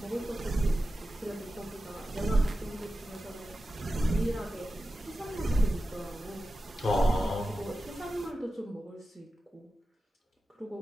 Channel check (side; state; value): both; normal; correlation 0.93